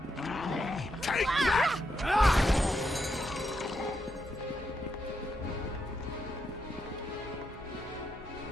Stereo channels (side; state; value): both; normal; correlation 0.82